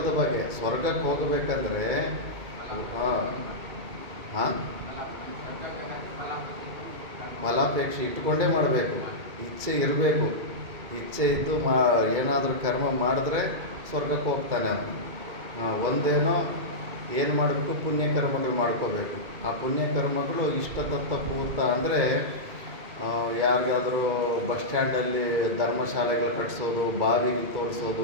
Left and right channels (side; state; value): left; late; 2.4 ms